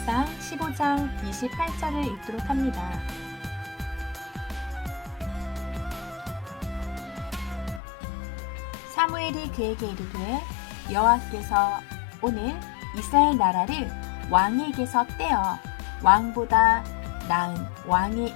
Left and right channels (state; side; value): drops out; right; at 7.8 s